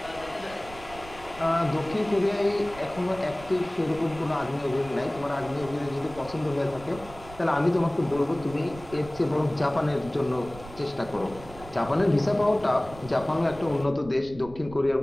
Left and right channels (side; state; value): right; noise; rumble, 17 dB below the sound